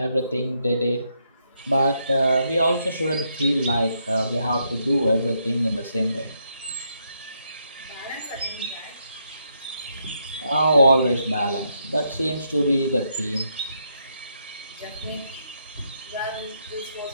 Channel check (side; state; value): both; inverted; correlation -0.78